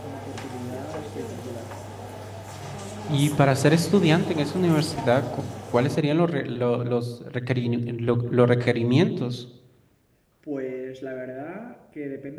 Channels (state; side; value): identical; both; correlation 1.00